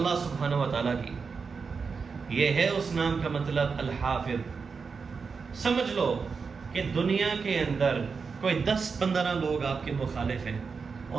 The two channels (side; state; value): left; quieter; 5.2 dB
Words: سبحانہ و تعالیٰ کی. یہ ہے اس نام کا مطلب الحافظ. سمجھ لو کہ دنیا کے اندر کوئی 10-15 لوگ آپ کے مخالف ہیں